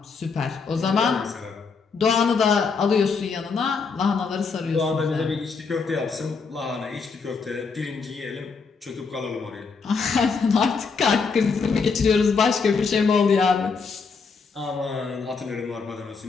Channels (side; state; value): right; quieter; 5.0 dB